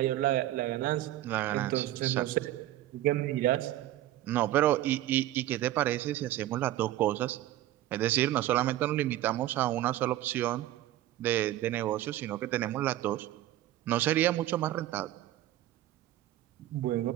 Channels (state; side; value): quieter; left; 14.3 dB